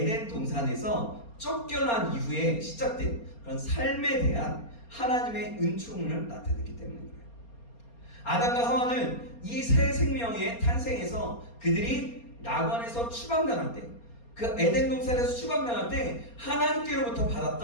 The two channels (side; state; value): right; late; 4.3 ms